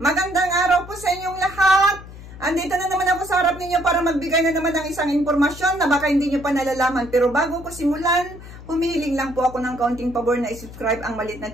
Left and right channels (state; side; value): noise; left; hum, 16 dB below the sound